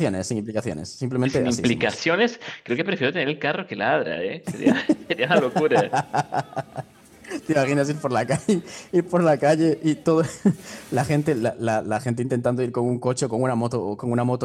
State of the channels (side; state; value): both; identical; correlation 1.00